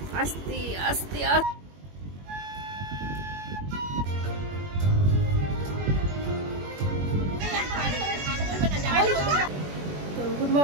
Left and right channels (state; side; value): late; left; 21 ms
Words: আস্তে আস্তে তো good